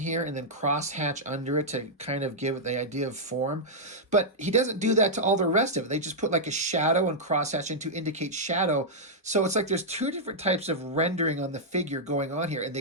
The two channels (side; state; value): both; normal; correlation -0.07